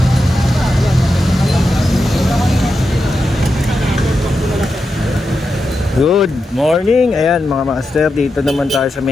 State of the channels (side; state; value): both; normal; correlation 0.88